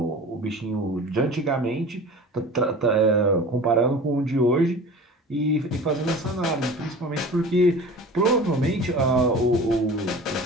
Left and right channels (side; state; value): both; normal; correlation 0.39